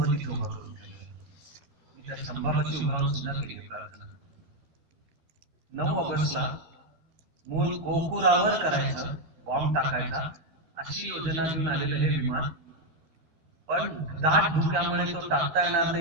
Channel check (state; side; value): late; left; 13 ms